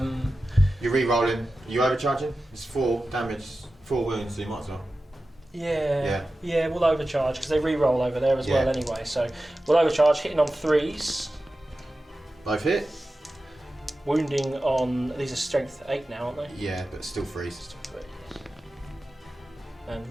re-rolling. Are you overcharging? It's 4 damage, 4 wounds, so you might as well. Yeah, we'll overcharge because they re-roll over there as well anyway. So we'll overcharge, hitting on 3s. Both hit? Wounding on, these are strength 8 now, aren't they? Yeah, but still 3s. And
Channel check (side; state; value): both; normal; correlation 0.94